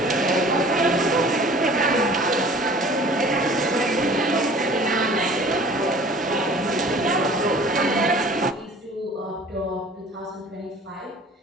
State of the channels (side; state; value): both; normal; correlation 0.48